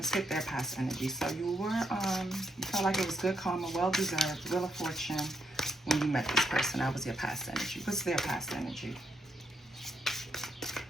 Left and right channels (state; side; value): normal; both; correlation 0.79